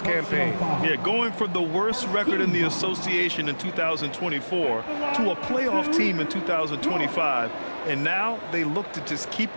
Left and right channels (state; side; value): inverted; both; correlation -1.00